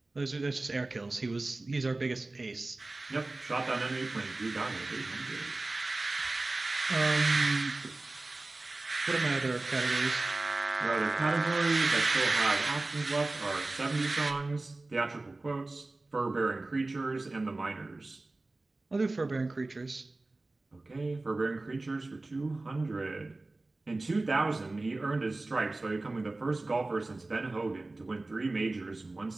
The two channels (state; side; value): quieter; left; 3.1 dB